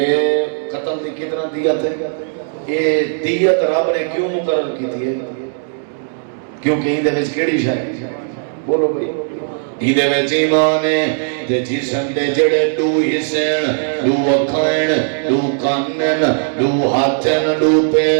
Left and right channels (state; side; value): silent; left; 68 dB below the other